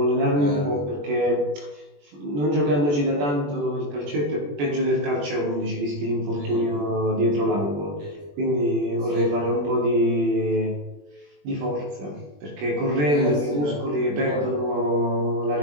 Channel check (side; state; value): left; late; 21 ms